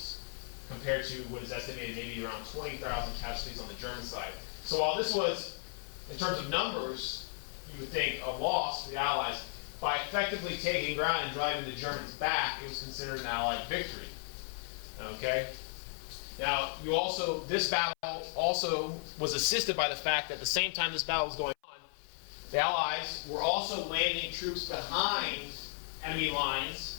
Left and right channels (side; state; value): right; silent; 54 dB below the other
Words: compared to what is estimated maybe around 20,000 casualties on the German side. So while this was, in terms of numbers, you would think a loss for the Allies, by effectively taking ground and driving the Germans back, it was considered an Allied victory. Okay? Now, this battle also was assisted by the fact that at the same time this battle was going on, the Allies were also landing troops behind enemy